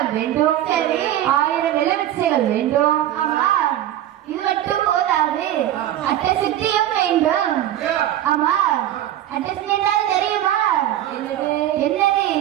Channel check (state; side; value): quieter; left; 12.5 dB